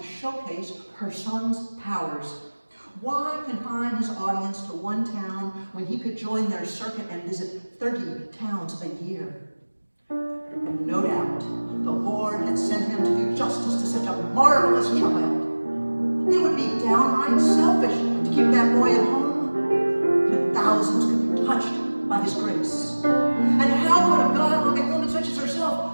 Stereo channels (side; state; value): both; inverted; correlation -1.00